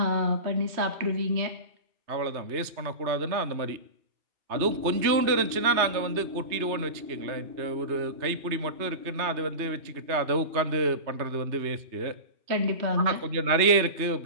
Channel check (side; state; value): left; late; 3.2 ms